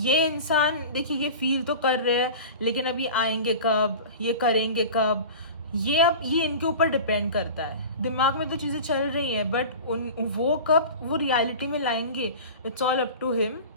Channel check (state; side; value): inverted; both; correlation -0.35